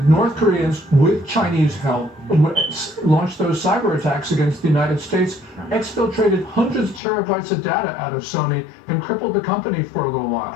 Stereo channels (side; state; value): right; drops out; at 7.0 s